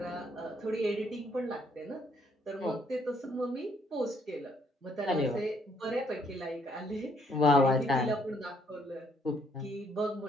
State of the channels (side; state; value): both; normal; correlation 0.68